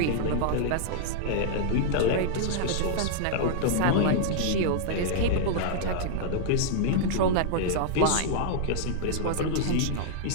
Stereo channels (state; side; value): different; both; correlation -0.01